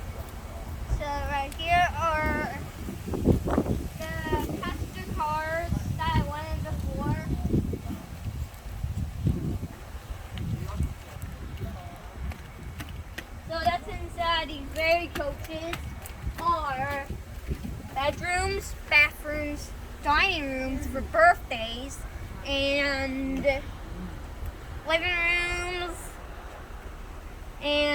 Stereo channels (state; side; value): identical; both; correlation 1.00